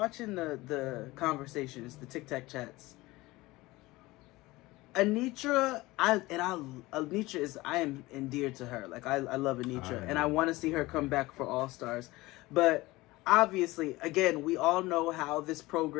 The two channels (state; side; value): quieter; right; 20.1 dB